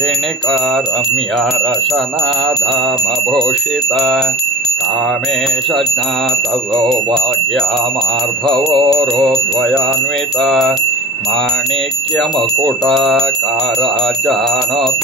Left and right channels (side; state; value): both; normal; correlation 0.34